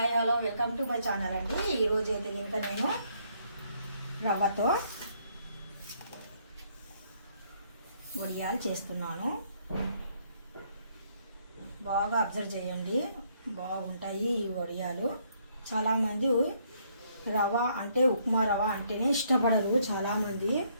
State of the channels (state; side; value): inverted; both; correlation -0.69